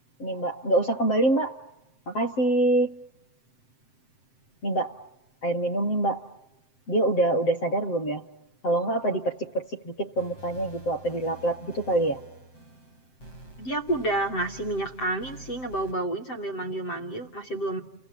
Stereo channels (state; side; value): late; right; 7.7 ms